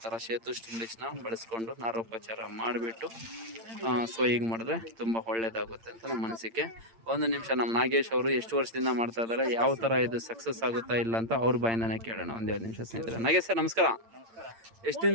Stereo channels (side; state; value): left; late; 8.8 ms